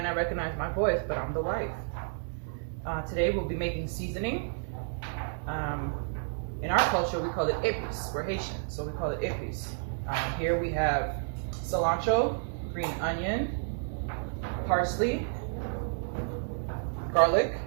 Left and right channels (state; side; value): silent; left; digital silence